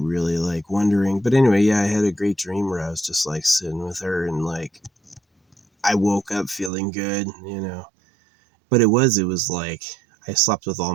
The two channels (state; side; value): drops out; left; at 6.7 s